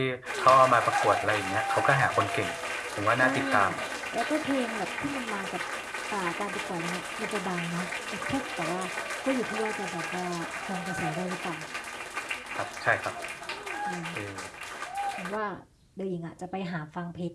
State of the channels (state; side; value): identical; both; correlation 1.00